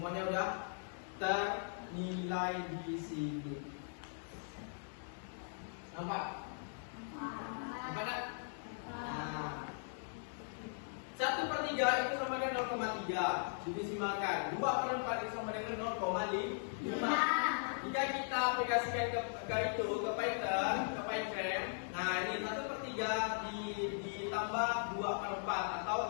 udah ternilai di sini. Nampak? Nampak tak? 1/3 itu sama dengan 0,3. Didesimalkan. 2/4 itu sama dengan 0,5. Jika kita aplikasikan ke itu, ke Python, ke Python, nah ini 1/3 ditambah 2/4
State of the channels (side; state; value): right; silent; digital silence